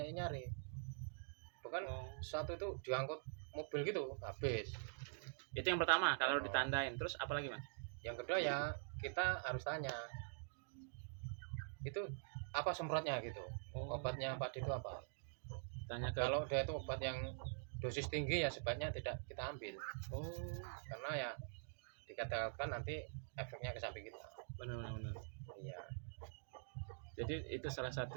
yang nyari. Bahkan Oh. satu itu diangkut mobil gitu habis. Itu yang pertama kalau Oh. ditandain. Terus apa lagi, Mas? Yang kedua ya kita harus tanya itu apa semprotnya gitu. Oh, Obatnya padi itu apa? tanya ke Kalau dia itu obat yang dosis tinggi ya sebaiknya tidak kita ambil Oh, karena ya dikatakan nanti efeknya ke sapi kita. benar benar benar. Iya. Jadi itu salah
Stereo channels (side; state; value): left; silent; digital silence